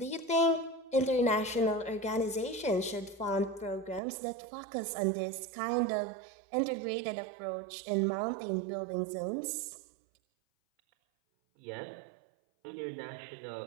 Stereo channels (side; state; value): left; drops out; at 4.0 s